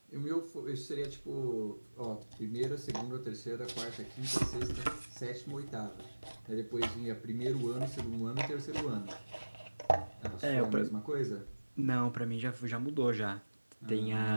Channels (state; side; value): inverted; both; correlation -1.00